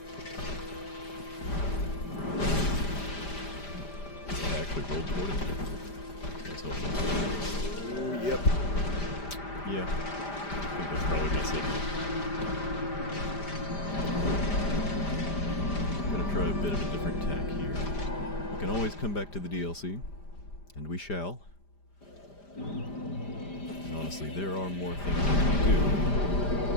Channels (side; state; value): right; late; 5.0 ms